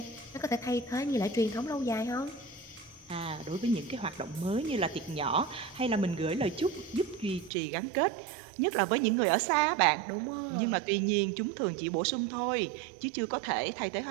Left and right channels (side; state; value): left; drops out; at 7.5 s